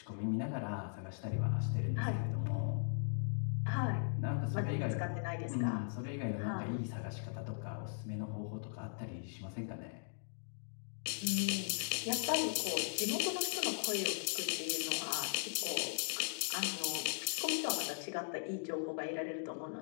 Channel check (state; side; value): silent; right; digital silence